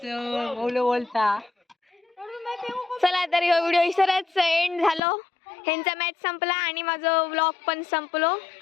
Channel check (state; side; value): drops out; right; at 5.0 s